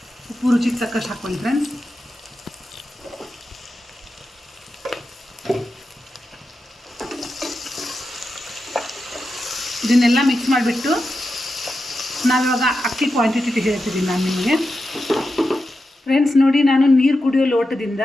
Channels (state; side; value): normal; both; correlation 0.89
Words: ಉಪ್ಪು ರುಚಿಗೆ ತಕ್ಕಷ್ಟು ಹಾಕ್ಕೊಳ್ಳಿ ಫ್ರೆಂಡ್ಸ್. ಇದನ್ನೆಲ್ಲ ಮಿಕ್ಸ್ ಮಾಡಿಬಿಟ್ಟು ನಾವಿವಾಗ ಅಕ್ಕಿ ಕ್ವಾಂಟಿಟಿ ಹೇಳ್ತಿದ್ದೀನಿ ನಾನು ನಿಮಗೆ ಫ್ರೆಂಡ್ಸ್. ನೋಡಿ, ನಾನು ನೀರು ಕುಡಿಯೋ ಲೋಟದಿಂದ